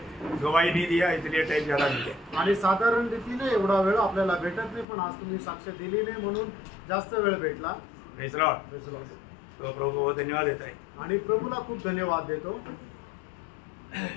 गवाही नहीं दिया इसलिए टाइम ज्यादा मिल गया। आणि साधारण रीतीने एवढा वेळ आपल्याला भेटत नाही, पण आज तुम्ही साक्ष दिली नाही म्हणून जास्त वेळ भेटला। Praise Lord. तो प्रभु को धन्यवाद देता है आणि प्रभूला खूप धन्यवाद देतो।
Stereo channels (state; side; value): drops out; right; at 4.9 s